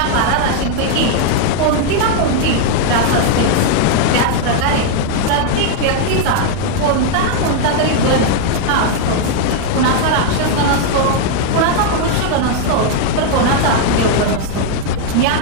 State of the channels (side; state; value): both; different; correlation 0.00